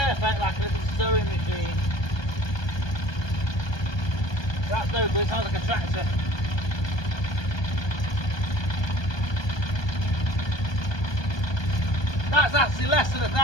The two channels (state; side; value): late; right; 1.2 ms